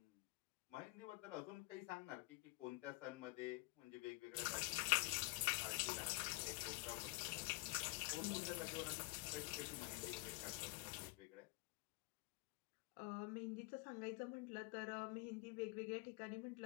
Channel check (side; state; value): right; quieter; 23.9 dB